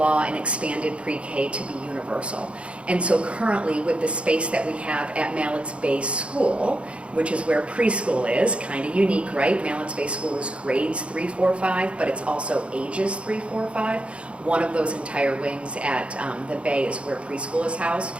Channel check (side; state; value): left; late; 0.060 ms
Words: and expanded pre-K to be universal. And so currently, with the space that we have at Mallett's Bay School, which is where preschool is, kind of unique, right? Mallett's Bay School is grades 3, 4, 5, but it's also ages 3, 4, 5. One of those entire wings at the Bay is where preschool is housed.